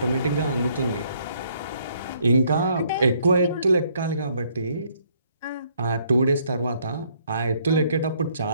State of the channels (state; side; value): inverted; both; correlation -0.67